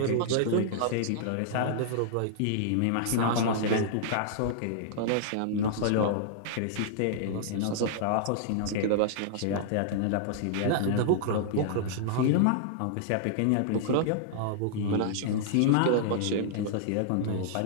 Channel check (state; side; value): different; both; correlation -0.01